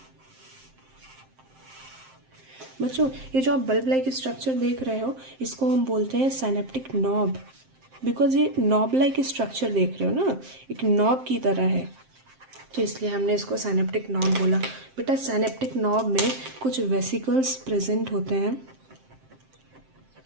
बच्चों ये जो आप बल्ब लाइक स्ट्रक्चर देख रहे हो इसको हम बोलते हैं साइनेप्टिक नॉब, बिकॉज ये नॉब लाइक स्ट्रक्चर देख रहे हो ना, एक नॉब की तरह है, तो इसलिए हमने इसको साइनेप्टिक नॉब बोला। बेटा साइनेप्टिक नॉब में कुछ वेसिकल्स प्रेजेंट होते हैं,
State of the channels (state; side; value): late; left; 7.6 ms